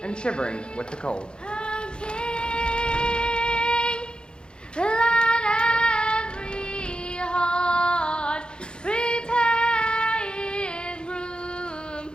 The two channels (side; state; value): right; late; 0.050 ms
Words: and shivering with the cold. Let every heart prepare in room,